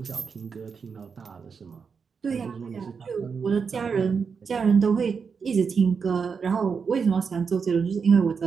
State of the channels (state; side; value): quieter; left; 5.8 dB